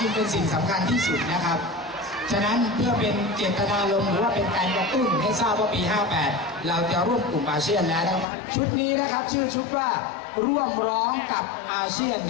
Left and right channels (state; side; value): drops out; right; at 8.2 s